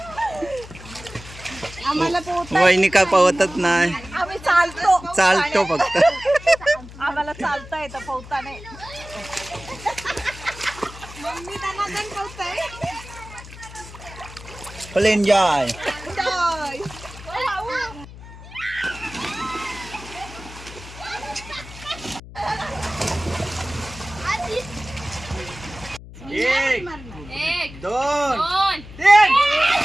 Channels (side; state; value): left; noise; hum, 16 dB below the sound